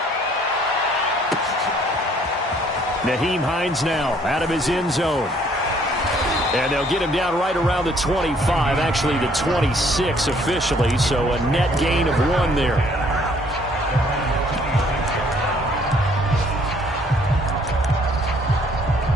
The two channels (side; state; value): both; normal; correlation 0.62